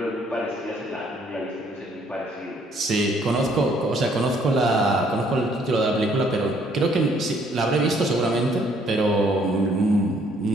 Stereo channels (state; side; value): normal; both; correlation 0.64